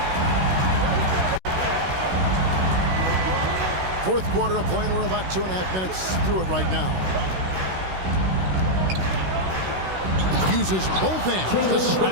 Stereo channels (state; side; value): late; left; 16 ms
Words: Fourth quarter of play, and we're about 2.5 minutes through it right now. Uses both hands to